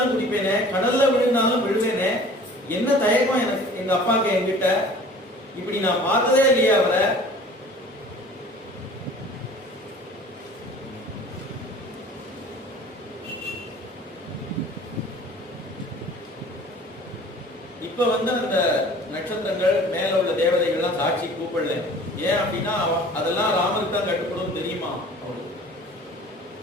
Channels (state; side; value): normal; both; correlation 0.47